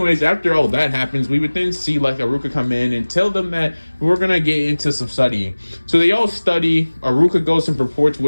after all that happens, we would then see like Iruka come in and tell them that we're gonna get into some studying. So they all study. Iruka goes and reports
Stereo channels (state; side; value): inverted; both; correlation -1.00